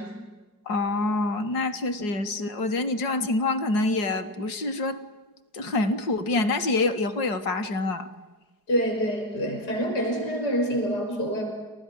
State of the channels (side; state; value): right; late; 4.8 ms